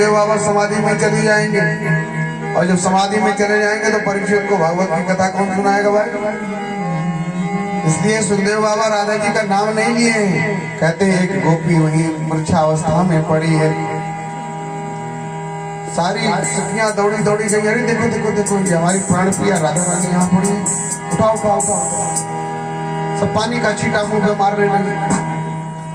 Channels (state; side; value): identical; both; correlation 1.00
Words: बाबा समाधि में चली जाएंगे, और जब समाधि में चले जाएंगे तो परीक्षित को भागवत की कथा कौन सुनाएगा भाई। इसलिए सुखदेव बाबा राधा जी का नाम नहीं लिए हैं। कहते हैं एक गोपी वही मूर्छावस्था में पड़ी है। सारी सखियां दौड़ी दौड़ी गई, अरे देखो देखो देखो ये हमारी प्राण प्रिया राधा रानी यहाँ पड़ी है, उठाओ उठाओ उठाओ। सब पानी का छींटा मुंह पे मारने लगे।